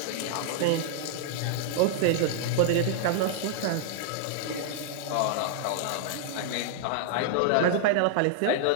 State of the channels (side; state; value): both; different; correlation -0.01